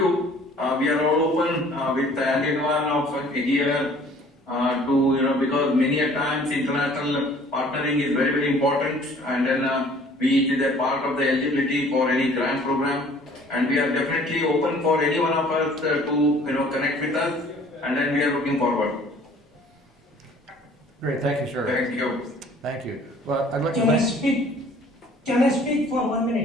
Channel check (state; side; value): normal; both; correlation 0.53